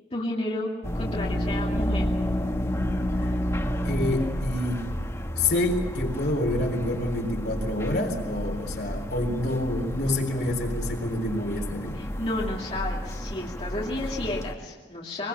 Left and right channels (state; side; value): normal; both; correlation 0.69